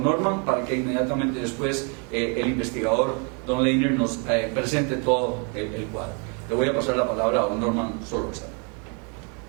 Norman para que inmediatamente después el investigador don Leiner nos presente todo el cuadro. Le voy a pasar la palabra a don Norman Solórzano.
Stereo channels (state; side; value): quieter; left; 36.2 dB